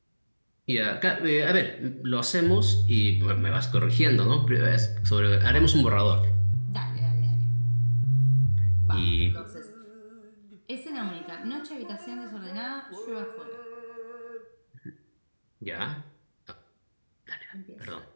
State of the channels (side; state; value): both; inverted; correlation -1.00